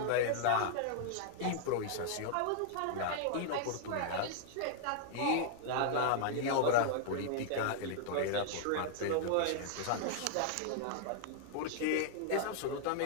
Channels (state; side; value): different; both; correlation -0.01